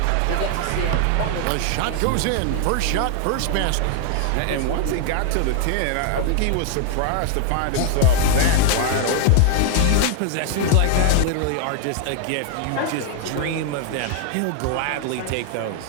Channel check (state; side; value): different; both; correlation 0.00